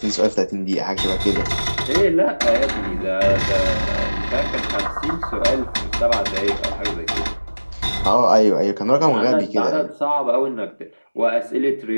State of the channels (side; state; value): both; inverted; correlation -1.00